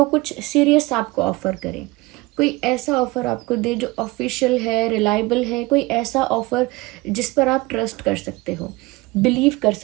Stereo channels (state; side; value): quieter; left; 22.1 dB